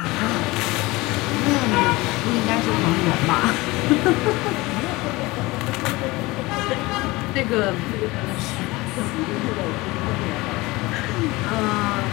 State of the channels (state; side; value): quieter; right; 21.6 dB